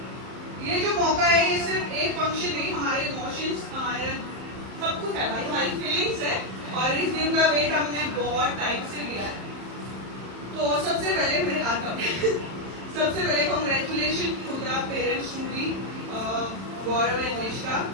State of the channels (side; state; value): left; late; 31 ms